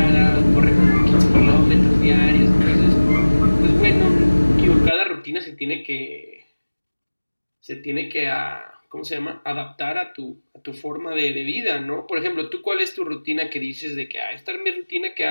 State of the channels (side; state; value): both; inverted; correlation -1.00